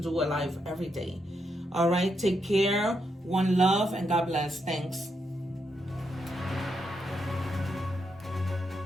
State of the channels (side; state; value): both; normal; correlation 0.81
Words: a live every day. All right, take care, one love, and God bless. Thanks.